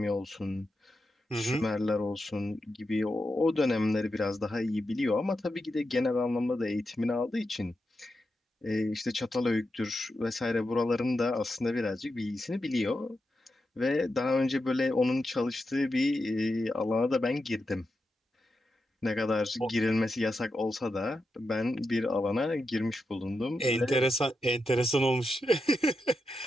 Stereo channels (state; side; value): normal; both; correlation 0.88